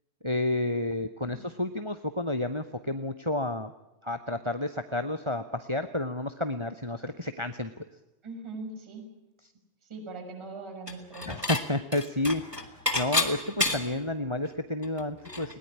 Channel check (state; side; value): late; left; 1.4 ms